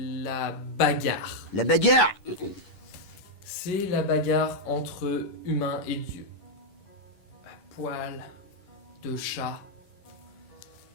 bagarre. La bagarre! C'est la bagarre entre humains et dieux. Poil de chat.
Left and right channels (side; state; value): right; late; 11 ms